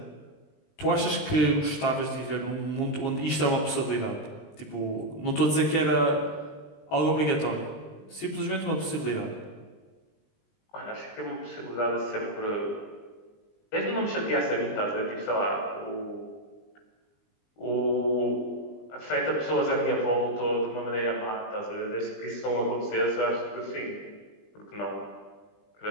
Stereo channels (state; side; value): late; right; 20 ms